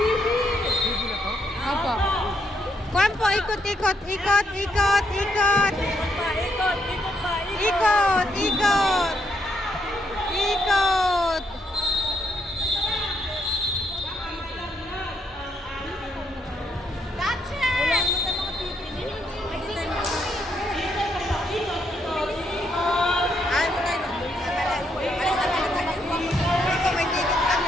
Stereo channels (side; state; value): both; normal; correlation 0.76